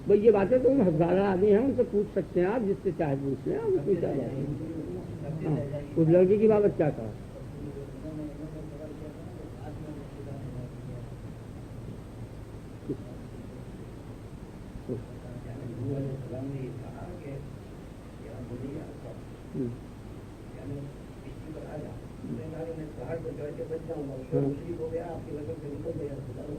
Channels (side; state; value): both; identical; correlation 1.00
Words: بھائی یہ باتیں تو ہزارہ آدمی ہیں، ان سے پوچھ سکتے ہیں آپ، جس سے چاہے پوچھ لیں، اس میں کیا بات ہے؟ ہاں، اس لڑکی کی بابت کیا کہا؟